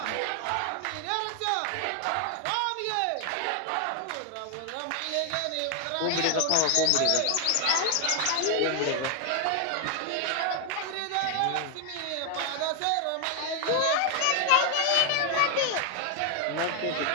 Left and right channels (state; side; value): different; both; correlation 0.00